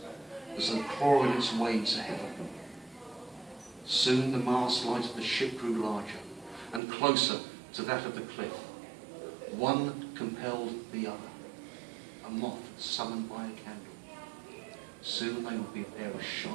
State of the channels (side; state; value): left; drops out; at 6.8 s